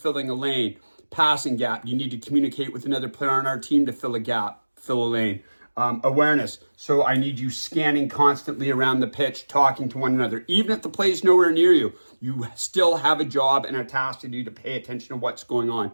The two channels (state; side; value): inverted; both; correlation -1.00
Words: a lane? Passing gap. You need to communicate with another player on our team to fill a gap, fill a lane. Awareness. So I need you scanning constantly around the pitch, talking to one another. Even if the play is nowhere near you, you still have a job and a task to do to pay attention to what's going on.